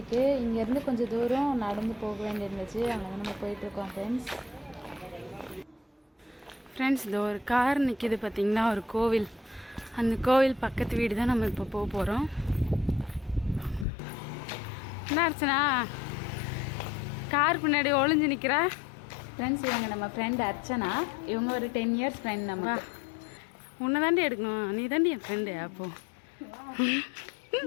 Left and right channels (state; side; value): drops out; right; at 13.9 s